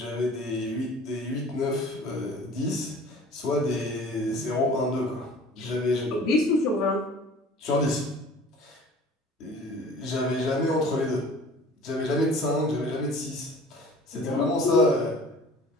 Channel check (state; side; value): normal; both; correlation 0.46